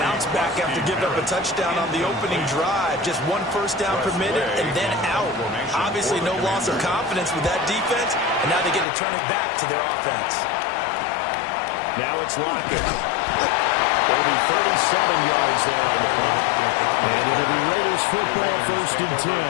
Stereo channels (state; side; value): drops out; right; at 8.8 s